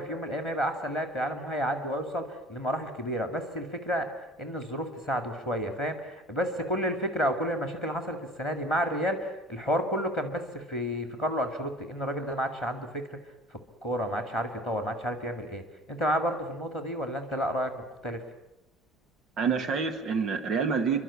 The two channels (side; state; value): both; normal; correlation 0.44